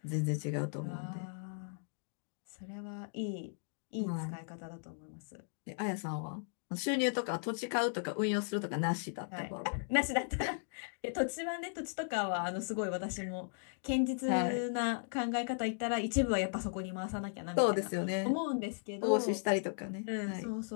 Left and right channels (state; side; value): silent; right; digital silence